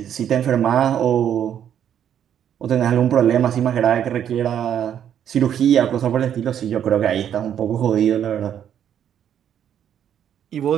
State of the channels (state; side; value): quieter; left; 9.5 dB